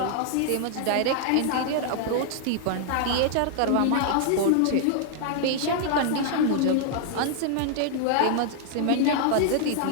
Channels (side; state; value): both; different; correlation -0.01